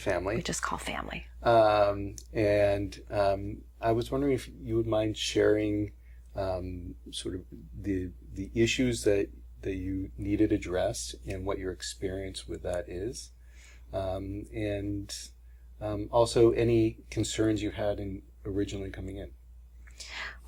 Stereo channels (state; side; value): identical; both; correlation 1.00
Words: We just call family. I was wondering if you would mind sharing sort of the issues that you needed addressed and what your experience with that is. Also any concerns you had in originally coming in.